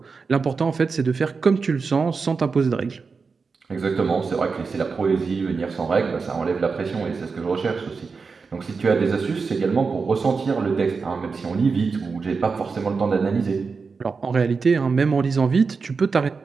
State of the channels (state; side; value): quieter; left; 4.9 dB